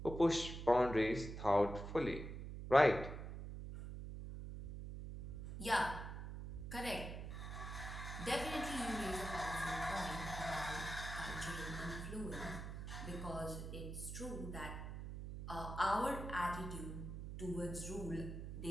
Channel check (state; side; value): noise; right; hum, 7 dB below the sound